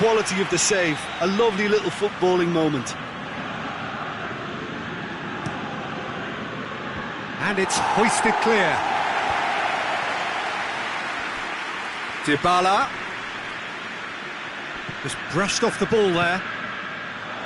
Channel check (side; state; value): both; identical; correlation 1.00